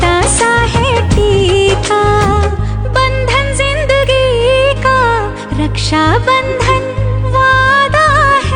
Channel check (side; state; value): both; identical; correlation 1.00